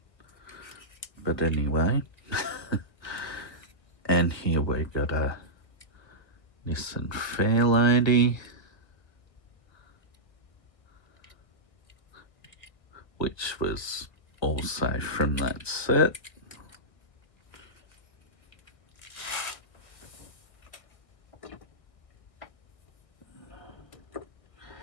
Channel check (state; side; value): late; right; 1.7 ms